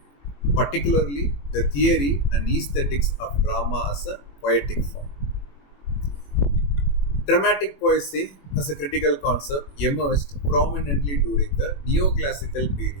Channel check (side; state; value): right; late; 21 ms